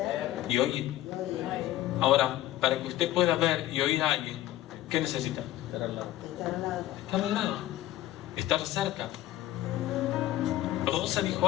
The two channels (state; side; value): quieter; right; 14.4 dB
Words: y oír. Ahora, para que usted pueda ver y oír a alguien, ¿qué necesita? Estar al lado. Estar al lado, estar cerca. Rosa dijo